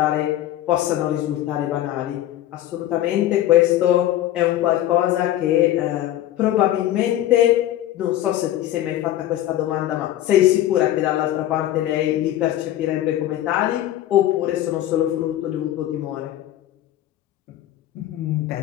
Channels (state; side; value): quieter; right; 13.3 dB